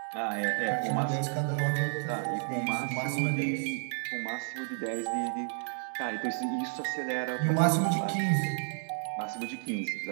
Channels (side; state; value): left; silent; 57 dB below the other